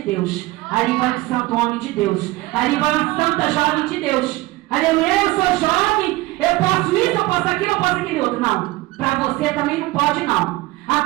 Deus. Ali vai um santo homem de Deus. Ali vai uma santa jovem de Deus. Aleluia, eu sou jovem, eu posso isso, eu posso aquilo, eu posso aquele outro. Não, para você também não pode, não. A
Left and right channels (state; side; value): quieter; left; 20.0 dB